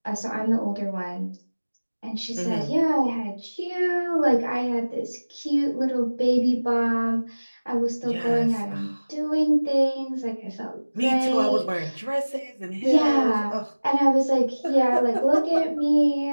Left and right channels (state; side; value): inverted; both; correlation -1.00